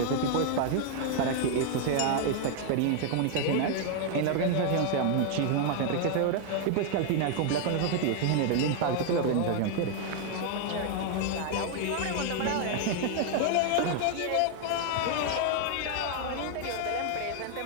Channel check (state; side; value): different; both; correlation 0.00